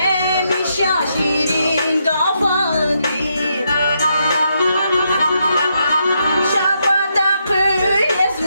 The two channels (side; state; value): both; inverted; correlation -0.79